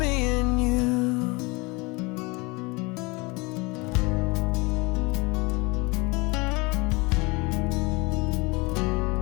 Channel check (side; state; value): right; quieter; 25.9 dB